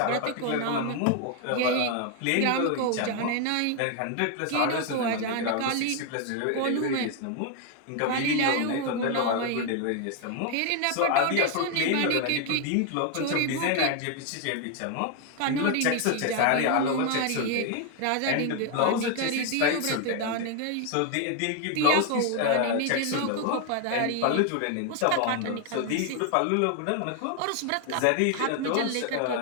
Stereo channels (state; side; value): different; both; correlation 0.01